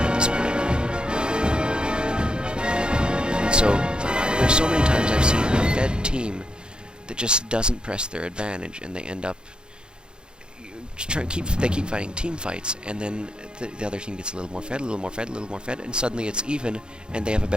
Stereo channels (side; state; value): left; late; 0.049 ms